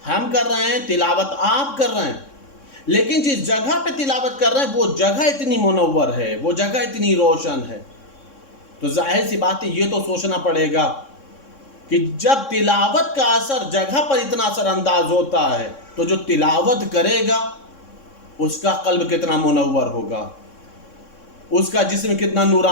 ہم کر رہے ہیں، تلاوت آپ کر رہے ہیں، لیکن جس جگہ پہ تلاوت کر رہے ہیں وہ جگہ اتنی منور ہے، وہ جگہ اتنی روشن ہے، تو ظاہر سی بات ہے یہ تو سوچنا پڑے گا کہ جب تلاوت کا اثر جگہ پر اتنا اثر انداز ہوتا ہے تو جو تلاوت کرے گا اس کا قلب کتنا منور ہوگا، اس کا جسم کتنا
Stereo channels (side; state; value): right; late; 3.6 ms